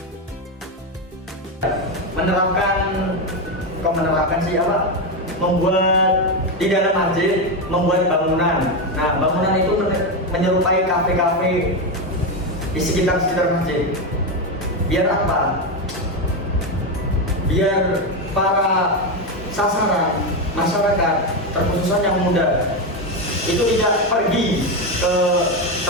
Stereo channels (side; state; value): both; normal; correlation 0.11